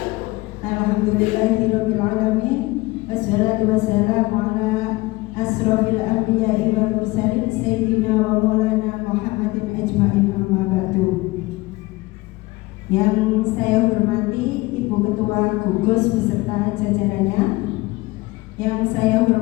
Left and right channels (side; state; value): right; quieter; 21.3 dB